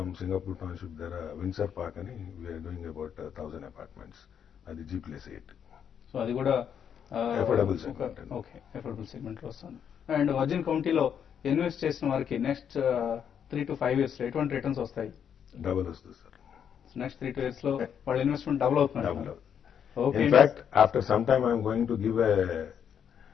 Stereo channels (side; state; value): right; quieter; 8.2 dB